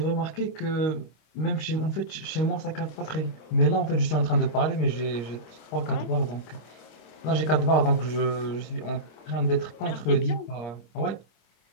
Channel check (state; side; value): late; right; 26 ms